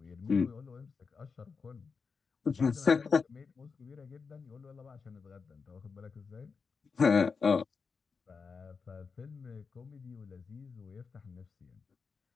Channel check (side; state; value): right; quieter; 5.2 dB